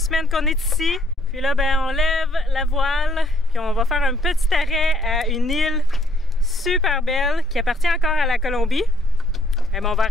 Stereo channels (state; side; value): normal; both; correlation 0.68